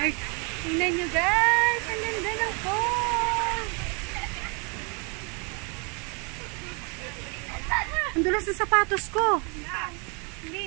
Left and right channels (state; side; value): quieter; left; 33.6 dB